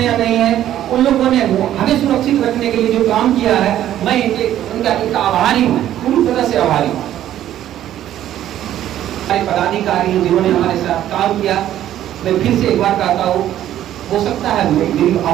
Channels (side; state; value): left; quieter; 12.0 dB